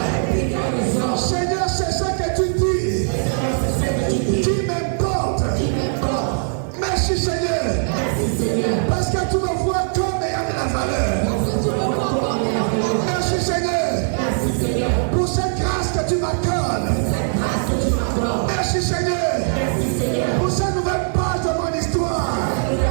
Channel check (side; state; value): left; silent; digital silence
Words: Seigneur, c'est ça que tu dis qui m'importe. Merci Seigneur, parce que tu me vois comme ayant de la valeur. Merci Seigneur pour cette grâce que tu m'accordes. Merci Seigneur pour cette nouvelle page de mon histoire.